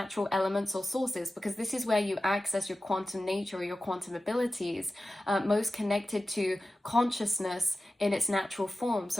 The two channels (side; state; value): both; normal; correlation 0.95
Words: elements or sources, because this is where you access your quantum nature or your quantum abilities, most connected to consciousness in its natural form.